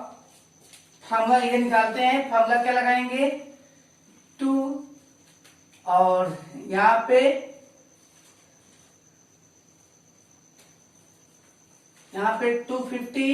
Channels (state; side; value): identical; both; correlation 1.00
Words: फार्मूला ये निकालते हैं। फार्मूला क्या लगाएंगे, 2 और यहां पे 250